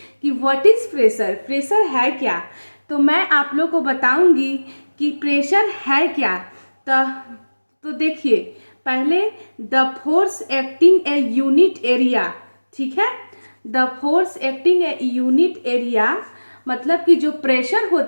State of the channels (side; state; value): both; inverted; correlation -1.00